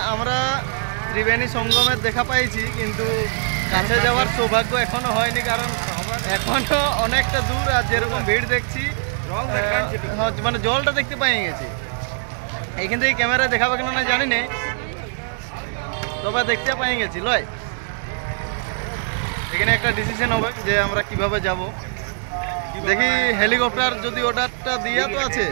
আমরা ত্রিবেণী সঙ্গমের দেখা পাইছি, কিন্তু কাছে যাওয়ার সৌভাগ্য এখনো হয়নি, কারণ এখনো অনেকটা দূর। আর যেরকম ভিড় দেখছি মানে জলটা দেখতে পাই গেছি। এইখান থেকে ক্যামেরায় দেখাবে কেন না জানি না, তবে দেখতে পাই গেছি লয়। এখানে একটা ডিসিশন হবে যে আমরা কিভাবে যাব। দেখি হেলিকপ্টার যদি অর্ডারটা দিয়া তো আছে,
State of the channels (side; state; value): left; silent; digital silence